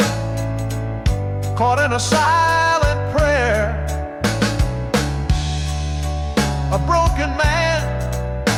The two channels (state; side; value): identical; both; correlation 1.00